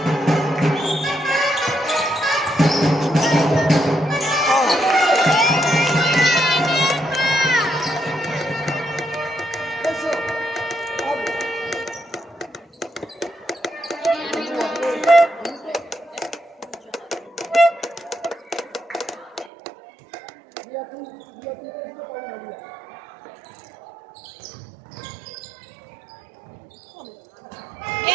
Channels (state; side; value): drops out; left; at 19.5 s